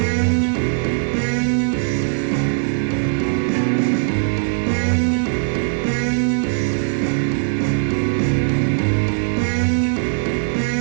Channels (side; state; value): left; silent; 59 dB below the other